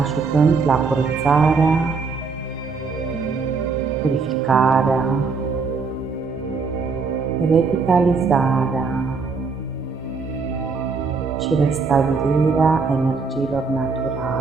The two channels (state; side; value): quieter; left; 4.7 dB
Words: la curățarea, purificarea, revitalizarea și restabilirea energiilor